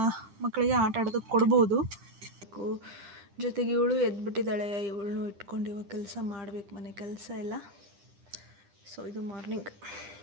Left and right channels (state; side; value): late; left; 10 ms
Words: ಮಕ್ಕಳಿಗೆ ಆಟ ಆಡೋದಕ್ಕೆ ಕೊಡ್ಬೋದು. ಜೊತೆಗೆ ಇವಳು ಎದ್ಬಿಟ್ಟಿದ್ದಾಳೆ. ಇವಳನ್ನು ಇಟ್ಕೊಂಡು ಇವಾಗ ಕೆಲಸ ಮಾಡಬೇಕು, ಮನೆ ಕೆಲಸ ಎಲ್ಲ. ಸೊ ಇದು ಮಾರ್ನಿಂಗ್.